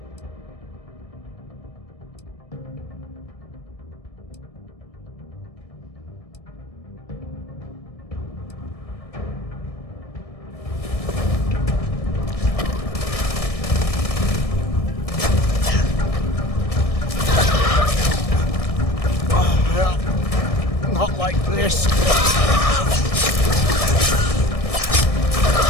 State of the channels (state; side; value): late; right; 1.6 ms